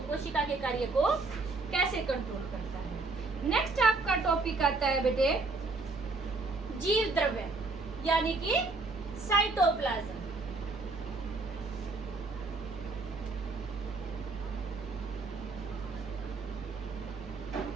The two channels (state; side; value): quieter; left; 3.6 dB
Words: कोशिका के कार्य को कैसे कंट्रोल करता है। नेक्स्ट आपका टॉपिक आता है बेटे जीव द्रव्य यानी कि साइटोप्लाज्म।